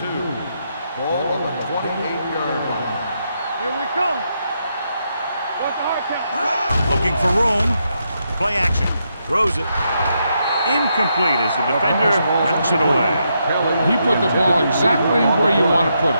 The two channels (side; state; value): both; inverted; correlation -0.81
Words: Ball on the 28-yard line. Here we come. What's the hard count? Looking for room. Play action. Throws it. Incomplete as the defender knocks it away. He put the ball exactly where you want to put it.